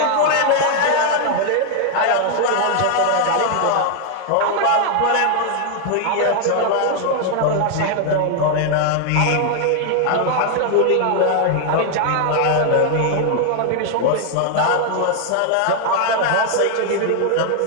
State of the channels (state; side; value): different; both; correlation 0.00